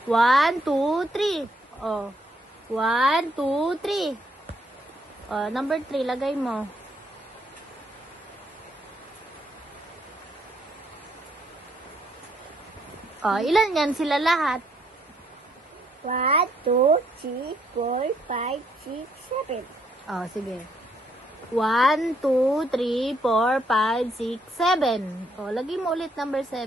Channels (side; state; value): both; normal; correlation 0.71